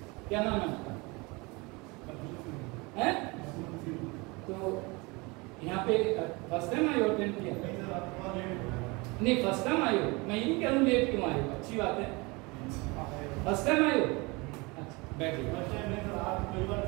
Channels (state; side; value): quieter; left; 26.0 dB